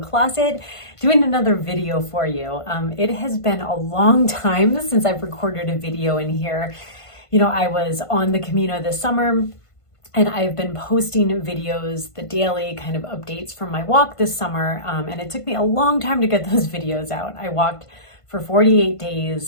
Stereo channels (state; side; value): late; right; 1.5 ms